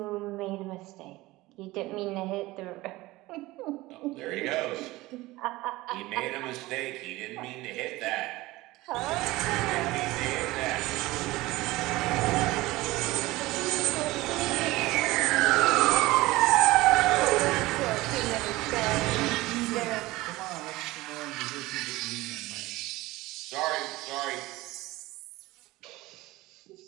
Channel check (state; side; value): quieter; left; 19.4 dB